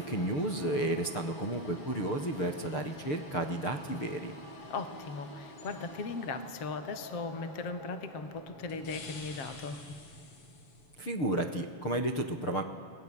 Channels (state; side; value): late; right; 6.7 ms